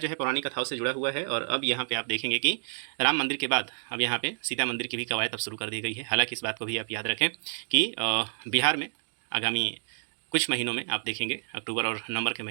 है पौराणिक कथाओं से जुड़ा हुआ है। और अब यहाँ पे आप देखेंगे कि राम मंदिर के बाद अब यहाँ पे सीता मंदिर की भी कवायद अब शुरू कर दी गई है। हालांकि इस बात को भी आप याद रखें कि बिहार में आगामी कुछ महीनों में आप देखेंगे, अक्टूबर और नवंबर के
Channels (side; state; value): left; silent; 59 dB below the other